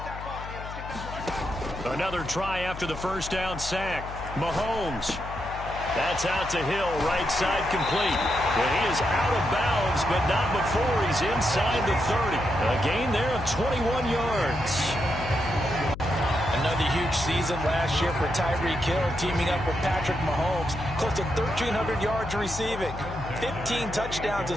Another try after the first down sack. Mahomes. That's out to Hill, right side complete. And he is out of bounds, but not before he's inside the 30. A gain there of 21 yards. Another huge season last year for Tyreek Hill, teaming up with Patrick Mahomes. Close to 1,300 yards receiving, 15 touchdowns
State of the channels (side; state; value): left; noise; hum, 11 dB below the sound